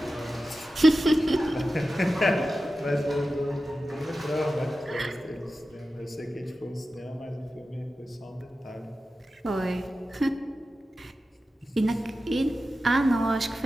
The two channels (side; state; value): both; normal; correlation 0.93